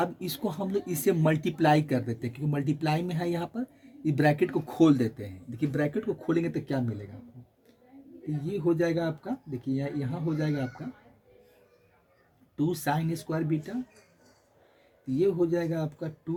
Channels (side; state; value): both; identical; correlation 1.00